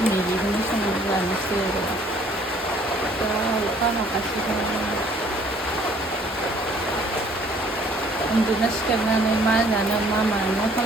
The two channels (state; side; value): normal; both; correlation 0.59